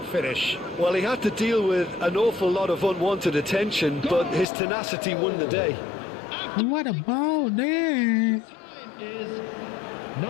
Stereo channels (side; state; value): right; drops out; at 4.5 s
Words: finish. Well, he had to deal with an awful lot of unwanted attention, but his tenacity won the day. What about that? Time is